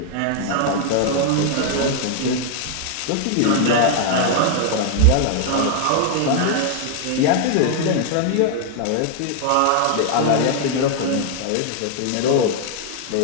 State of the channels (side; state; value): both; different; correlation 0.00